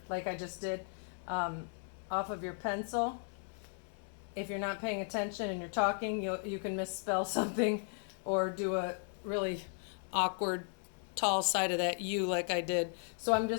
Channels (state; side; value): silent; right; 54 dB below the other